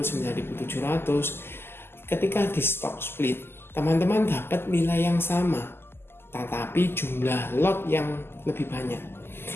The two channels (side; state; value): right; late; 0.11 ms